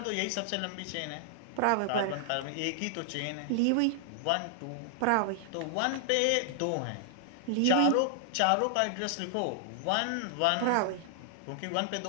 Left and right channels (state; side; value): different; both; correlation -0.01